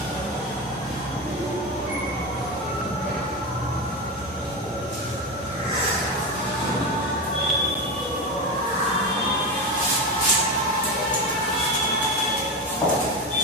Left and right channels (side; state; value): both; normal; correlation 0.18